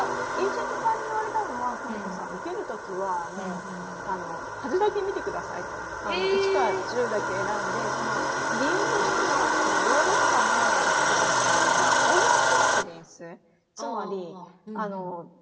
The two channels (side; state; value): both; identical; correlation 1.00